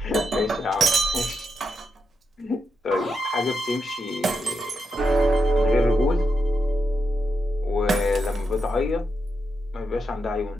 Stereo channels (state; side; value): normal; both; correlation 0.84